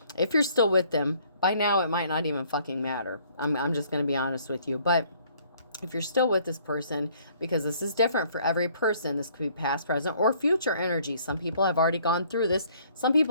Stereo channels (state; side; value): inverted; both; correlation -0.61